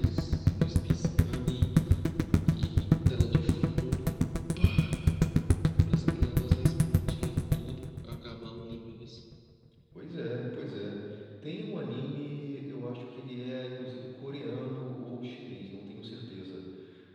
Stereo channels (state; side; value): identical; both; correlation 1.00